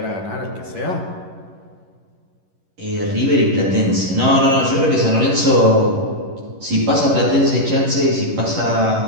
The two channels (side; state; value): left; late; 11 ms